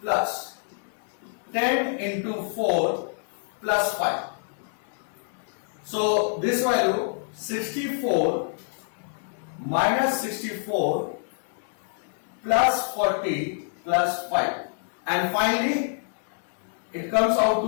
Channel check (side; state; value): right; silent; 60 dB below the other